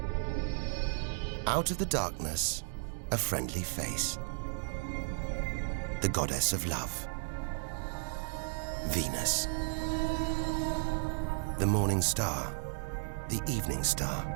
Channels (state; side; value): silent; left; digital silence